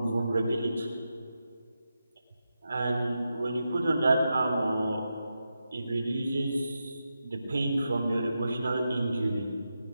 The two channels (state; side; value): inverted; both; correlation -0.88